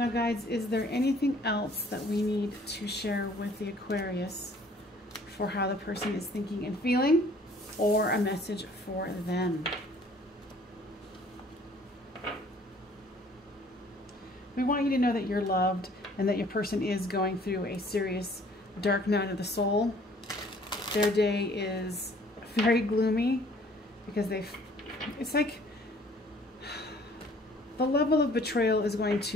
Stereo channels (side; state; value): both; normal; correlation 0.56